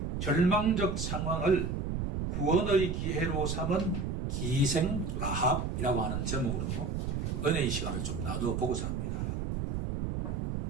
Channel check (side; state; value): right; noise; rumble, 2 dB below the sound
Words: 절망적 상황을 구원의 기회로 삼은 기생 라합이라고 하는 제목으로 은혜의 시간을 좀 나누어 보고자 합니다.